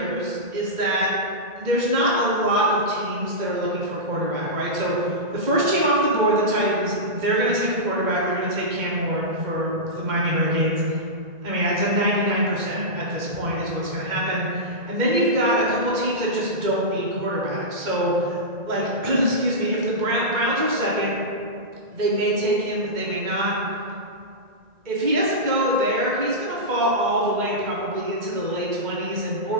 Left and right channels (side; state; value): left; late; 2.1 ms